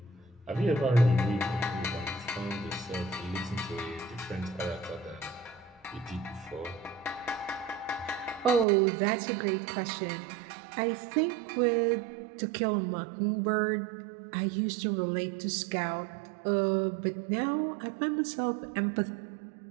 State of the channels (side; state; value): left; drops out; at 8.7 s